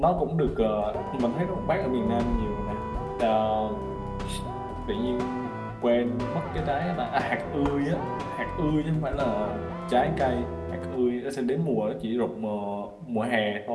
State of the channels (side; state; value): both; identical; correlation 1.00